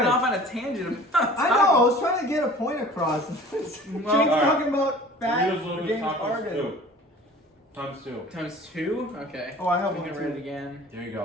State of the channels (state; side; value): normal; both; correlation 0.45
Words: Okay. off on a tangent about I know. I was trying to get a point across. James alright. talking about fat Doritos Locos James Tacos Harden. 2. Times 2. Times 2? Okay. Oh, I have I'm one gonna read it too. again. There you